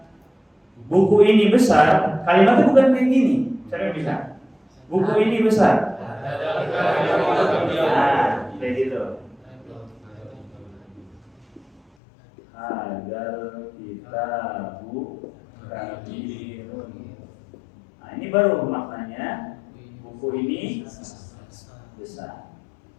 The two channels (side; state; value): right; drops out; at 11.8 s